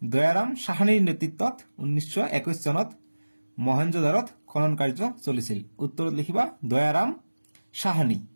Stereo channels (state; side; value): inverted; both; correlation -1.00